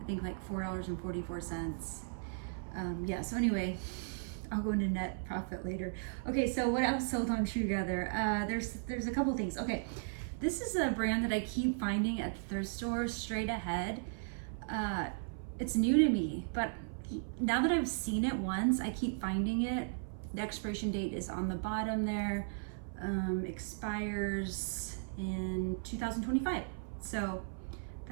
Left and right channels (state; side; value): silent; left; 54 dB below the other